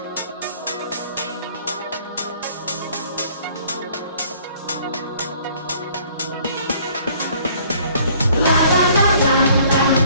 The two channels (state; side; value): inverted; both; correlation -0.58